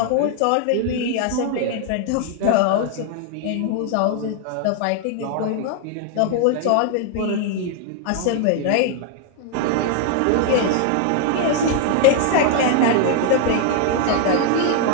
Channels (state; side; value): different; both; correlation 0.00